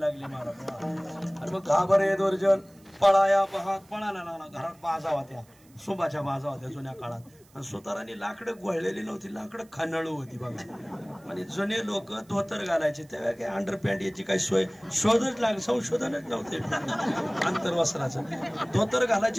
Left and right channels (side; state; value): right; noise; hiss, 29 dB below the sound